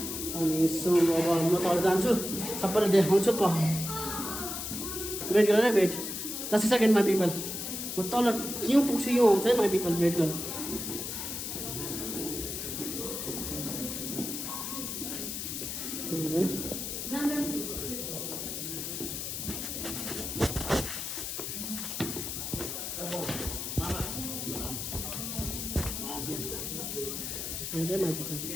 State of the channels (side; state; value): left; noise; hiss, 5 dB below the sound